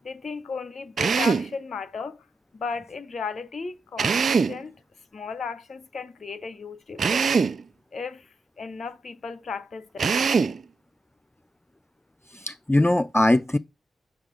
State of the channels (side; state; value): both; normal; correlation 0.87